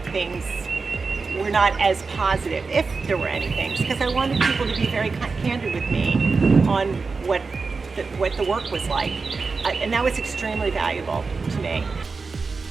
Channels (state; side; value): quieter; left; 4.4 dB